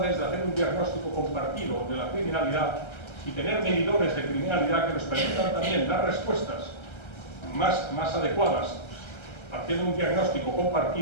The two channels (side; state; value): right; late; 1.3 ms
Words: de hacer un diagnóstico compartido de la criminalidad y tener medidores de criminalidad que nos permitan también dar respuestas más adecuadas, partiendo de un diagnóstico